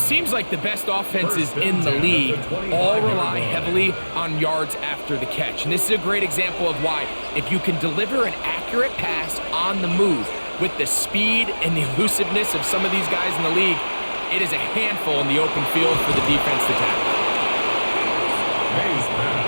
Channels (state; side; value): inverted; both; correlation -1.00